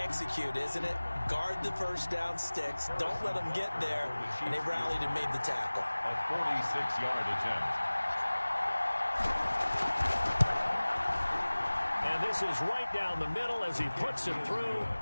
isn't it? Guard the first down sticks. Don't let them get there. And they rallied and made the tackle. A 46-yard attempt. And this is right down the middle as he puts it through.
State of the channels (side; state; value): both; inverted; correlation -1.00